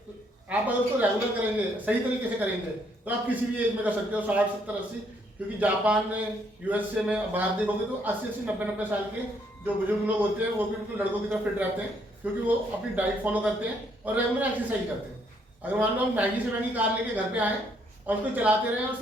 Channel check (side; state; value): both; normal; correlation 0.70